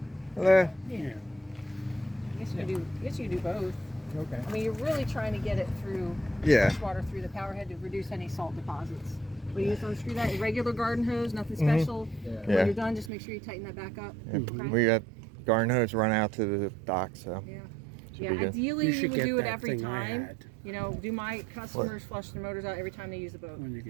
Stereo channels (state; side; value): drops out; left; at 13.1 s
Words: Eh, Yeah. I guess you could do both. Okay. I mean, you're really trying to get it through Yeah. fresh water through the power head to reduce any salt deposits. But you just unscrew that, your regular garden hose, nothing special. Yeah. When Yeah. you're done, just make sure you tighten that back up. Yeah, we got garden hose run out to the dock, so Yeah. should Yeah, be good. ideally You you should would get do it that every thing I time. had. You know, do my customers flush their motors out every time they use the boat? When you